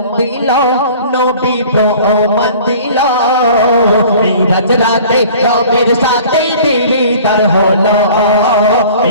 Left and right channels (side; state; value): both; inverted; correlation -0.47